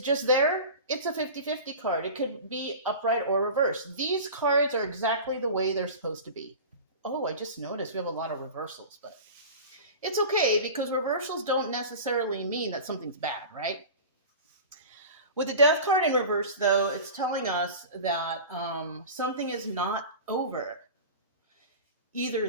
just there, it's a 50-50 card. It could be upright or reverse. These cards are exactly the way they're supposed to be. Oh, I just noticed we have a lot of reversals, but it's okay because reversals don't necessarily mean that something's bad, right? With the Death card in reverse, though, it's telling us that something is not over.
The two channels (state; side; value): inverted; both; correlation -0.34